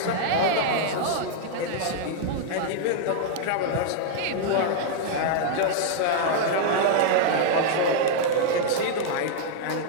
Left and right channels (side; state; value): both; different; correlation -0.01